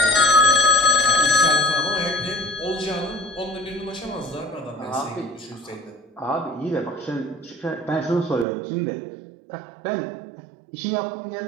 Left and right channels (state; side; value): drops out; left; at 8.5 s